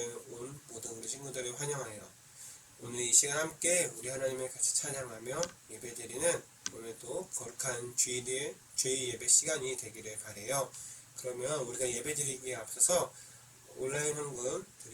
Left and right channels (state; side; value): identical; both; correlation 1.00